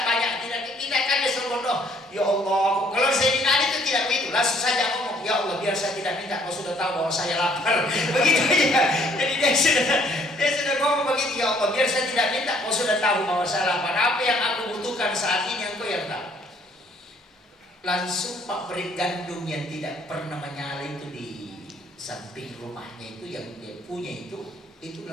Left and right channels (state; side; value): normal; both; correlation 0.62